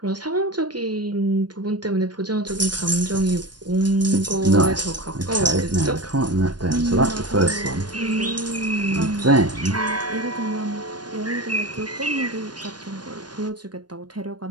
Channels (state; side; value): late; left; 0.70 ms